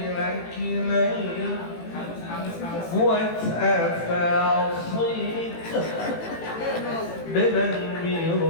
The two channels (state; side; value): late; right; 18 ms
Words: lain. Buat apa صيت dengan